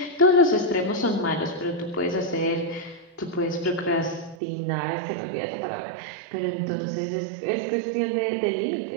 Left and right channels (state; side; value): drops out; left; at 4.4 s